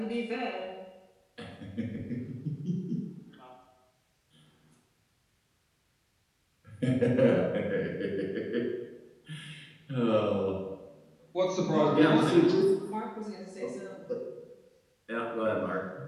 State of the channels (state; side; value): identical; both; correlation 1.00